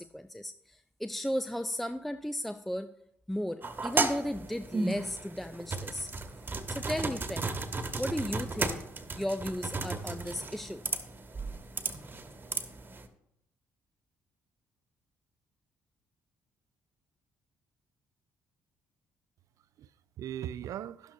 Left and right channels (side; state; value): both; normal; correlation 0.71